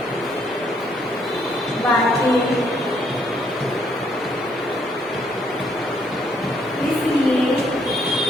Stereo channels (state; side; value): normal; both; correlation 0.70